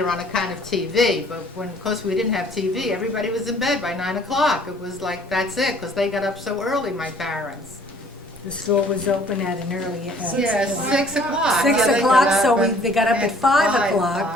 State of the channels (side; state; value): both; normal; correlation 0.57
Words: on a kind of TV, but when, of course, we didn't have TV, everybody was in bed by 9 o'clock. It was like, that's it, because they got up so early, my parents. The store was open at an early, Yeah, 6 o'clock. 6 Yeah, they o'clock, got so up they got up at 5